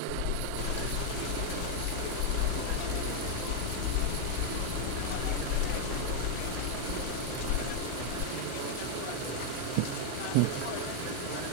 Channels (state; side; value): different; both; correlation 0.00